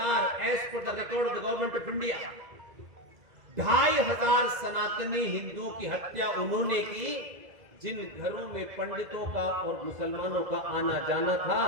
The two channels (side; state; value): left; late; 2.0 ms